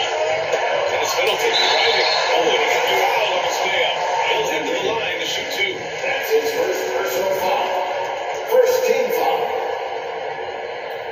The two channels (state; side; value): identical; both; correlation 1.00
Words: And it's Middleton driving. Oh, and he got fouled on his way up. He'll head to the line to shoot 2. That's his first personal foul. First team foul.